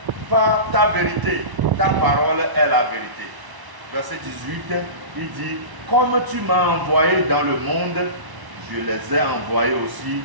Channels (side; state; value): left; late; 1.0 ms